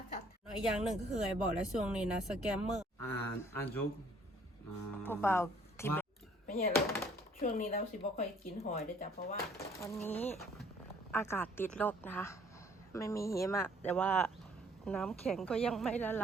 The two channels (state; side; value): normal; both; correlation 0.60